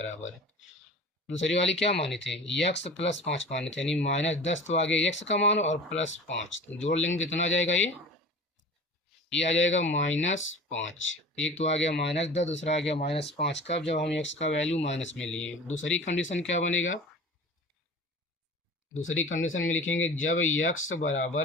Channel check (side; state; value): both; normal; correlation 0.39